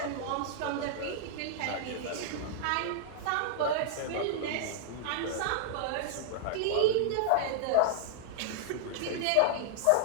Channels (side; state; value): both; different; correlation -0.01